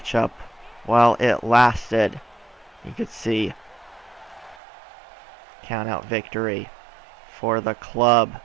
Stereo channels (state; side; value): drops out; left; at 4.6 s